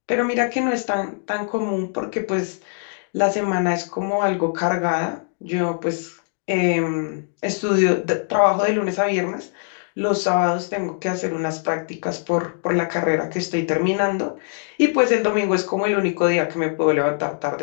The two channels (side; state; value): right; silent; 61 dB below the other